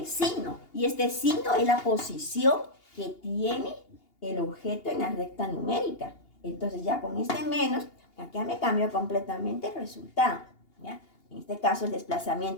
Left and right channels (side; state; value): right; late; 2.8 ms